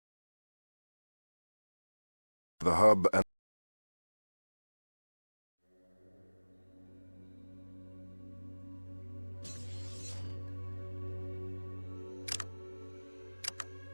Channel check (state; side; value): inverted; both; correlation -1.00